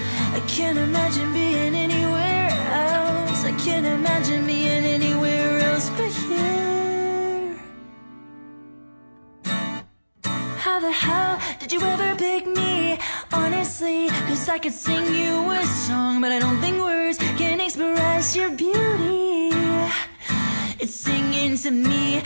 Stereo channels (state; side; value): inverted; both; correlation -1.00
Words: I can't imagine being anywhere else. I can't imagine being anywhere else but here. How the hell did you ever pick me? Honestly, 'cause I could sing you a song, but I don't think words can express your beauty. It's singing to me.